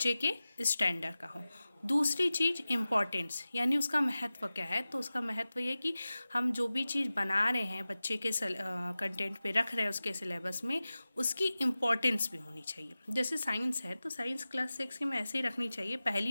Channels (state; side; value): inverted; both; correlation -0.96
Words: के स्टैंडर्ड का हो। दूसरी चीज़ इम्पॉर्टेंस, यानी उसका महत्व क्या है। तो उसका महत्व ये कि हम जो भी चीज़ बना रहे हैं बच्चे के कंटेंट पे रख रहे हैं उसके सिलेबस में, उसकी इम्पॉर्टेंस भी होनी चाहिए। जैसे साइंस है तो साइंस क्लास 6 की में ऐसे ही रखनी चाहिए।